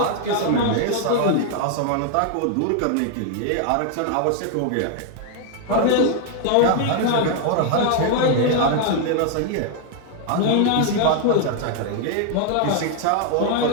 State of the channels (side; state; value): both; different; correlation 0.00